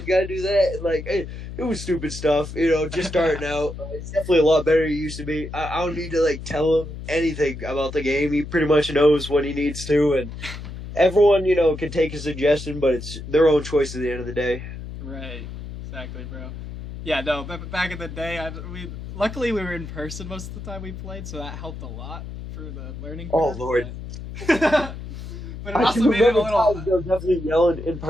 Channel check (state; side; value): noise; left; hum, 10 dB below the sound